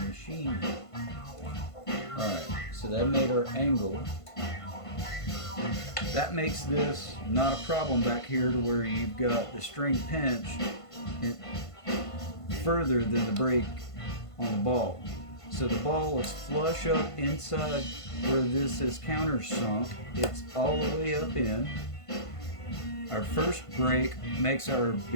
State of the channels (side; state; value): right; late; 1.5 ms